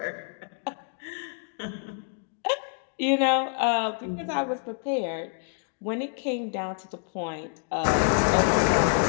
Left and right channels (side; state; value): right; silent; 59 dB below the other